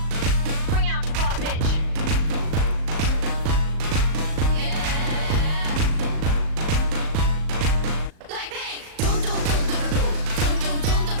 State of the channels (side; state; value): left; late; 38 ms